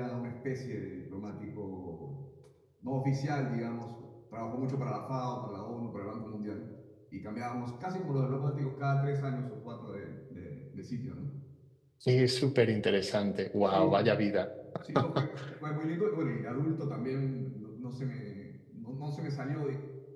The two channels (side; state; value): both; identical; correlation 1.00